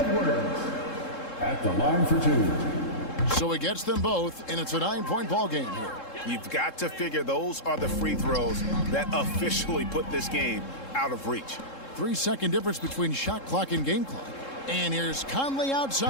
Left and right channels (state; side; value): late; right; 3.7 ms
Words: at the line for 2. So he gets them both, and it's a 9-point ball game here. You've got to figure those are the free throws that officially put this game out of reach. 3-second difference between shot clock and game clock. And here's Conley